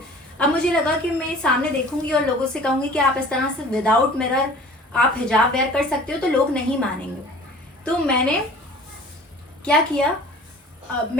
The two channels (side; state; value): both; normal; correlation 0.46